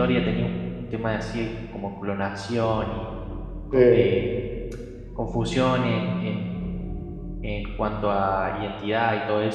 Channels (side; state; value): both; identical; correlation 1.00